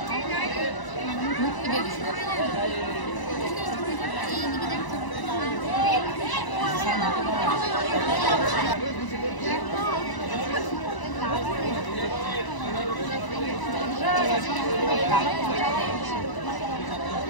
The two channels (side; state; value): right; late; 1.0 ms